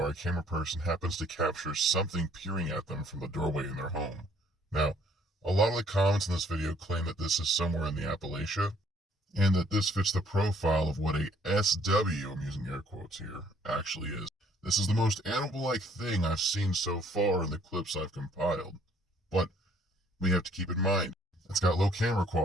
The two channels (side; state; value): both; normal; correlation 0.62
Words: our camera person happens to capture something peering at them from the doorway in their home. Now, a lot of the comments in this video claim that this is somewhere in the Appalachia, and that this fits the profile of what a SW, I'm using air quotes here, actually is. This is the most animal-like thing I've seen so far in the clips I've compiled. But we have to keep in mind, it's got low camera